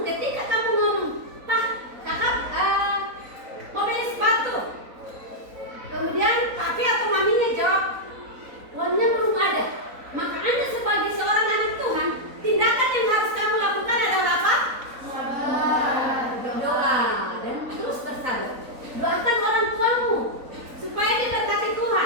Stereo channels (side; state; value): left; late; 3.9 ms